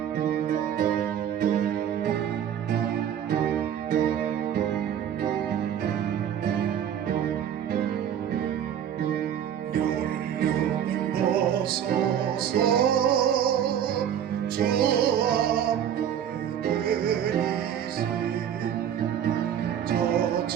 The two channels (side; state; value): left; quieter; 9.6 dB